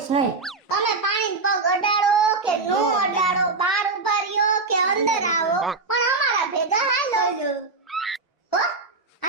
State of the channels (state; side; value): quieter; left; 3.8 dB